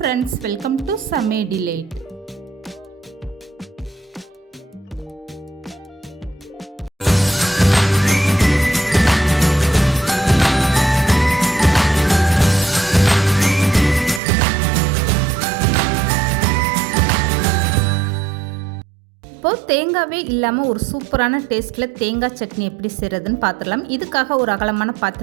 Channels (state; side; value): drops out; left; at 14.2 s